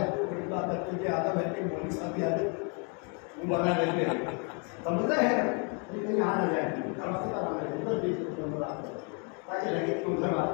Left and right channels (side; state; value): right; quieter; 36.9 dB